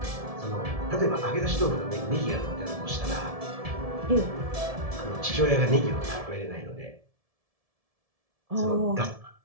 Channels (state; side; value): late; left; 1.7 ms